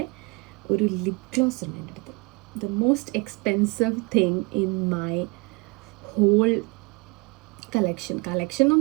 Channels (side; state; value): left; quieter; 28.6 dB